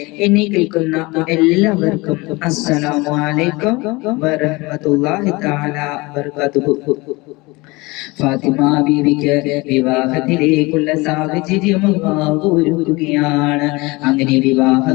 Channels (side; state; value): right; quieter; 23.6 dB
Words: എന്നെ കേൾക്കുന്ന എല്ലാവർക്കും അസ്സലാമു അലൈക്കും വറഹ്മത്തുള്ളാഹി തആല വബറകാതുഹു. ഫാത്തിമ ബീവിക്ക് വിവാഹത്തിലേക്കുള്ള സാഹചര്യം അല്ലാഹു ഒരുക്കുകയാണ്. അങ്ങനെ